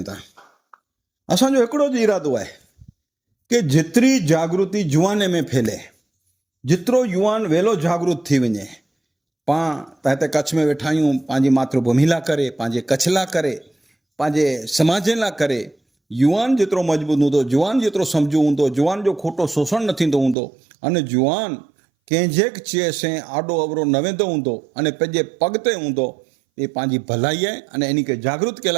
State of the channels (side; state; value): left; drops out; at 20.4 s